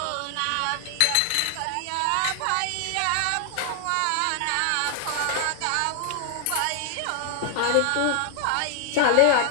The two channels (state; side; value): different; both; correlation 0.00